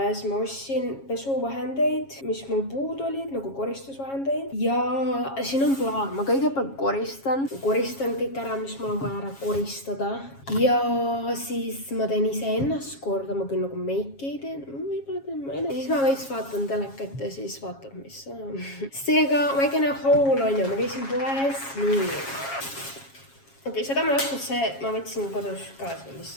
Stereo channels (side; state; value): right; late; 7.3 ms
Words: ma ostsin pesuvahendeid, mis mul puudu olid, nagu koristusvahendeid. Ja siin on plaan, ma kõigepealt koristan kõik ära, mis mul on vaja ära koristada. Ja siis ma teen ise ennast korda, ma küll nagu make ei tee, võib-olla teen ma enne. Siis ma veits vaatan telekat ja siis vaatab, mis on. Seega väikene haul on ju, ma käisin poes, nii. Okei, seda ma ei ostnud see, ma võtsin kodus kaasa